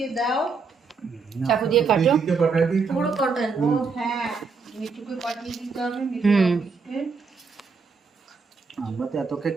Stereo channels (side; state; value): left; quieter; 4.8 dB